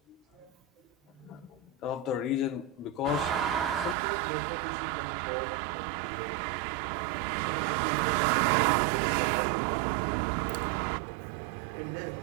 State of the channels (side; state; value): left; drops out; at 4.0 s